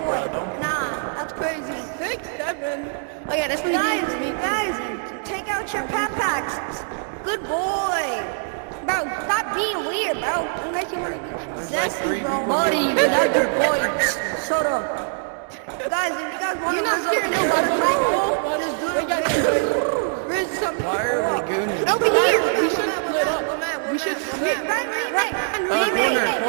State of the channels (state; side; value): silent; left; digital silence